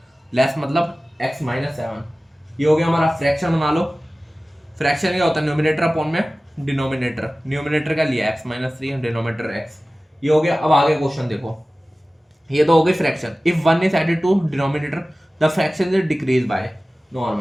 less मतलब x माइनस 7। ये हो गया हमारा फ्रैक्शन, बना लो। फ्रैक्शन क्या होता है, न्यूमरेटर अपॉन में डिनोमिनेटर, न्यूमरेटर का लिया x माइनस 3, डिनोमिनेटर x। ये हो गया। अब आगे क्वेश्चन देखो, ये तो हो गई fraction. If 1 is added to denominator the fraction is decrease by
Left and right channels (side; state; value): both; normal; correlation 0.97